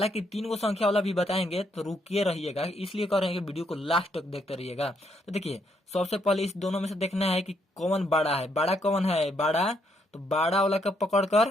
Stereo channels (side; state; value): both; normal; correlation 0.74